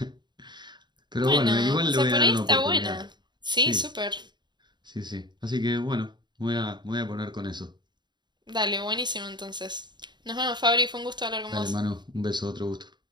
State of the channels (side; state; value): left; late; 0.21 ms